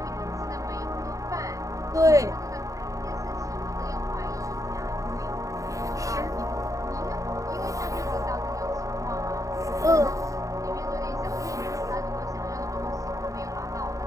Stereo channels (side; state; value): left; late; 0.16 ms